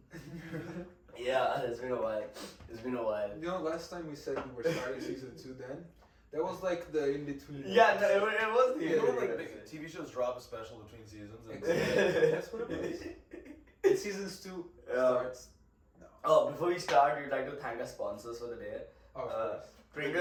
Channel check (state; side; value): identical; both; correlation 1.00